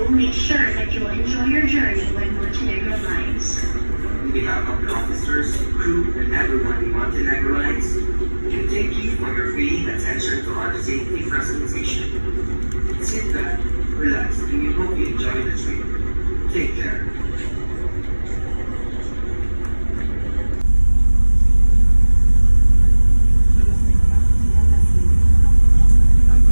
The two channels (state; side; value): inverted; both; correlation -1.00